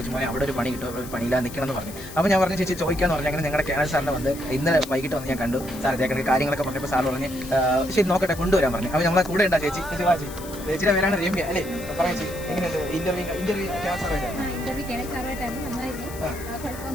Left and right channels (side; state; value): left; noise; hiss, 15 dB below the sound